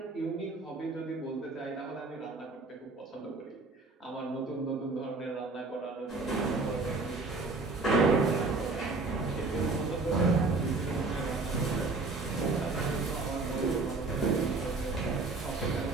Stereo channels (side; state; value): left; quieter; 3.6 dB